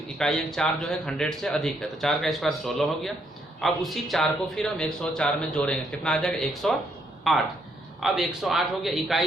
इकाई अंक 4 जो है 100 से अधिक है, तो 4 का स्क्वायर 16 हो गया। अब उसी 4 को फिर हम 104 में जोड़ेंगे, कितना आ जाएगा 108। अब 108 हो गया,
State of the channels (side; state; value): both; normal; correlation 0.73